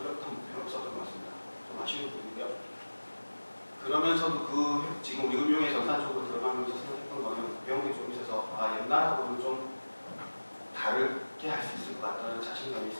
목표는 없었던 것 같습니다. 좀 아쉬운 부분이고요. 그러면서도 지금 우리금융의 전산 쪽으로 들어가면서 생각했던 거는 배운 게 좀 있어서 옛날하고는 좀 다르게 할 수 있을 것 같다는 자신감이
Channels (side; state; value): both; inverted; correlation -1.00